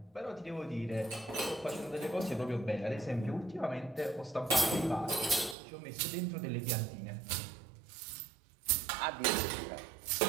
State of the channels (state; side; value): drops out; left; at 5.6 s